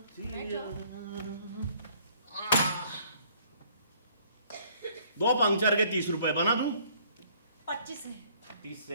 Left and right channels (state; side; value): inverted; both; correlation -0.60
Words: दो पंक्चर के 30 रुपए बना दूं? 25 में 30